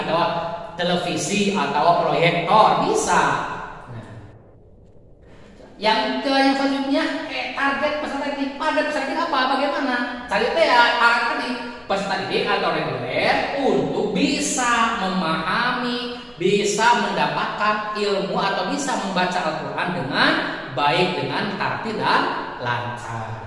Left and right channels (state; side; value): identical; both; correlation 1.00